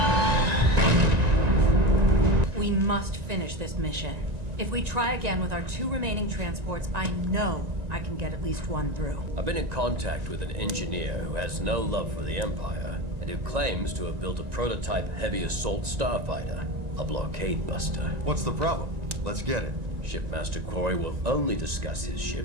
We must finish this mission. If we try again with our 2 remaining transports, I know I can get at least one through. I've been in contact with an engineer who has no love for the Empire and who claims to have built a prototype heavy assault starfighter, a blockade buster. What's the problem? Let's get it. Shipmaster Quarry will only discuss his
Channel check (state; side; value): late; left; 1.9 ms